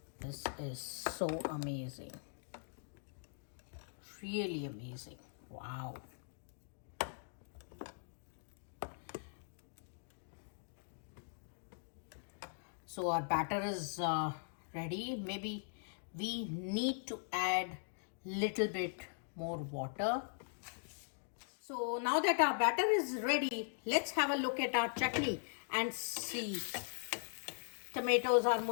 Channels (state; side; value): silent; right; digital silence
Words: This is so amazing, really amazing. Wow. So our batter is ready. Maybe we need to add little bit more water. So now that our batter is ready, let's have a look at our chutney and see. Tomatoes are